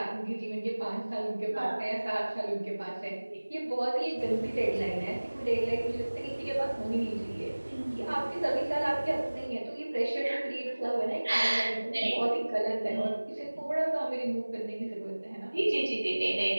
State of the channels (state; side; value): inverted; both; correlation -1.00